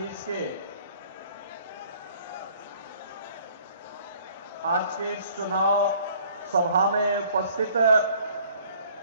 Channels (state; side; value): inverted; both; correlation -0.56